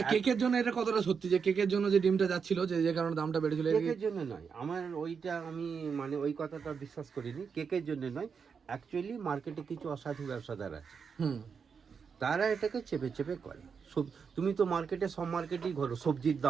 কেকের জন্য এটা কতটা সত্যি যে কেকের জন্য যে ডিমটা যাচ্ছিল, যে কারণে দামটা বেড়েছিল? কেকের জন্য নয়, আমার ওইটা আমি মানে ওই কথাটা বিশ্বাস করিনি। কেকের জন্য নয়, অ্যাকচুয়ালি মার্কেটে কিছু অসাধু ব্যবসাদার আছে, তারা এটাকে চেপে চেপে করে। তুমি তো মার্কেটে, সব মার্কেটেই ঘোরো, সবজির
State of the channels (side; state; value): left; quieter; 6.1 dB